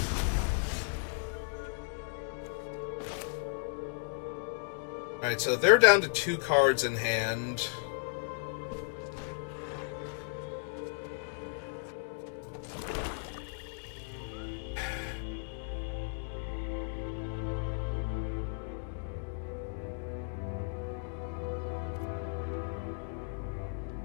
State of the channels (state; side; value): silent; right; digital silence